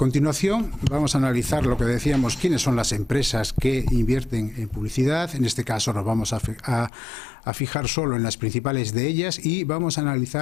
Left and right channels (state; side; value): drops out; right; at 6.9 s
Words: vamos a analizar lo que decíamos, quiénes son las empresas que invierten en publicidad. En este caso nos vamos a fijar solo en las principales de ellas y vamos a